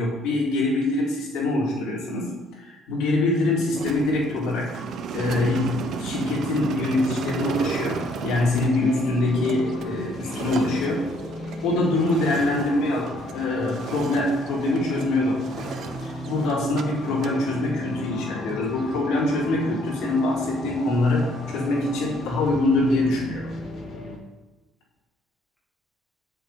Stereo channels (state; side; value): normal; both; correlation 0.64